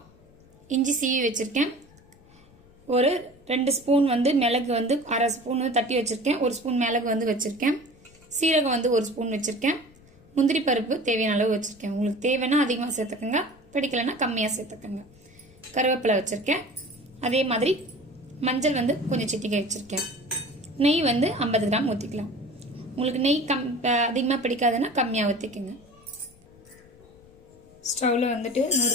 இஞ்சி சீவி வச்சுருக்கேன், ஒரு 2 ஸ்பூன் வந்து மிளகு வந்து 1/2 ஸ்பூன் வந்து தட்டி வச்சுருக்கேன், 1 ஸ்பூன் மிளகு வந்து வச்சுருக்கேன், சீரகம் வந்து 1 ஸ்பூன் வச்சுருக்கேன், முந்திரி பருப்பு தேவையான அளவு வச்சுருக்கேன். உங்களுக்கு தேவைன்னா அதிகமாக சேர்த்துக்கோங்க, பிடிக்கலைன்னா கம்மியாக சேர்த்துக்கோங்க. கருவேப்பிலை வச்சுருக்கேன், அதே மாதிரி மஞ்சள் வந்து கொஞ்சம் சிட்டிகை வச்சுருக்கேன். நெய் வந்து 50 கிராம் ஊற்றிக்கலாம். உங்களுக்கு நெய் அதிகமாக பிடிக்காதுன்னா கம்மியாக ஊற்றிக்கோங்க. ஸ்டவ்வில் வந்துட்டு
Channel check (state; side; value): noise; left; rumble, 26 dB below the sound